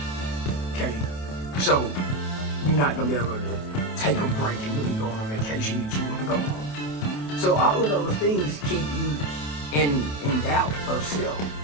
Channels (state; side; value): late; right; 28 ms